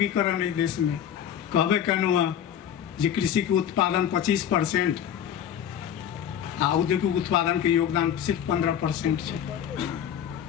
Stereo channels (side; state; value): right; quieter; 9.5 dB